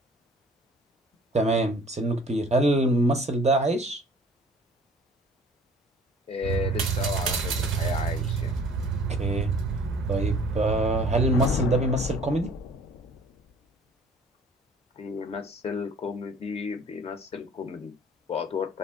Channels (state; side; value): normal; both; correlation 0.51